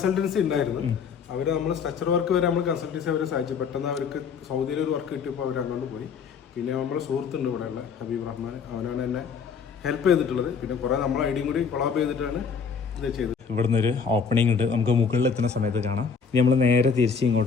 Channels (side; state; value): right; quieter; 6.0 dB